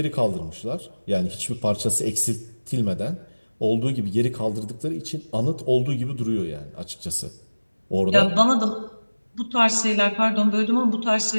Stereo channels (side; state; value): both; inverted; correlation -1.00